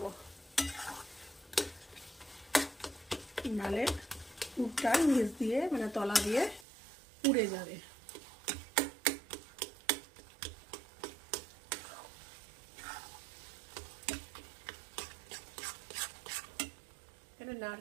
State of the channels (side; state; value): left; drops out; at 6.7 s